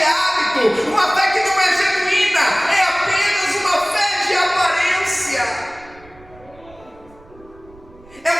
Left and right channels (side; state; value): right; noise; rumble, 25 dB below the sound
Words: hábito, uma fé que não é genuína, é apenas uma fé de aparência. É